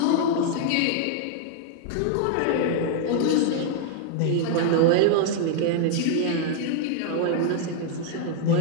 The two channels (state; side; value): different; both; correlation 0.00